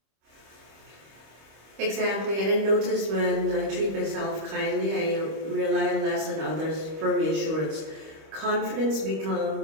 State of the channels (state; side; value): late; left; 25 ms